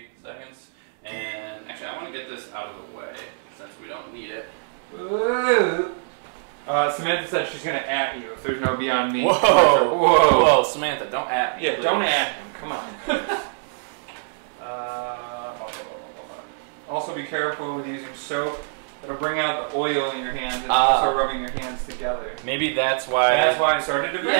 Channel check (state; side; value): silent; left; digital silence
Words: seconds. And actually I want to get this out of the way since we don't need it. Ooh. Samantha said she's going to at you if there's no Beyond Meat. Whoa, Samantha, don't at me. Yeah, please. Don't at him. Come on. Also be careful with using soap. It'll bring out the oil in your hands and also rubbing your hands together. Maybe that's why. That's why it started to burn,